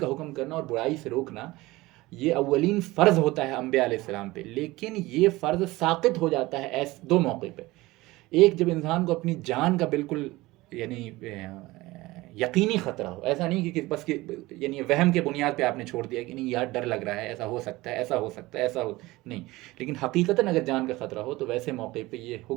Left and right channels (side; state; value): left; quieter; 19.8 dB